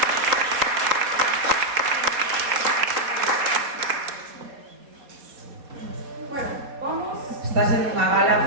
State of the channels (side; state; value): left; late; 4.2 ms